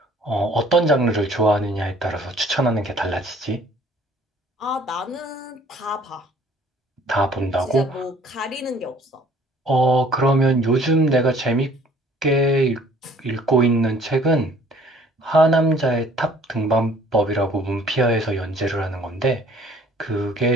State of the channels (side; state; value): both; normal; correlation 0.56